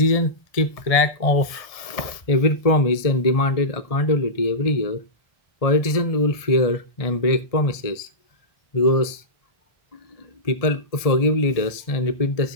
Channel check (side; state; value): right; late; 1.6 ms